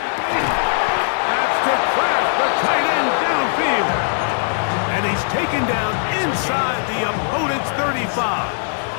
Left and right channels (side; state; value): right; silent; digital silence